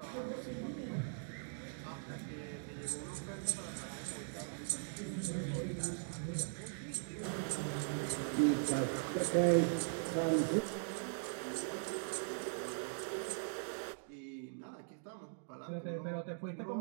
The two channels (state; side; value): silent; left; digital silence